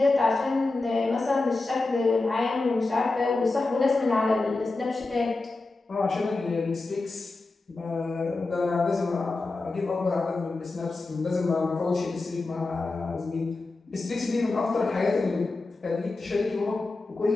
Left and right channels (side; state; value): right; quieter; 3.4 dB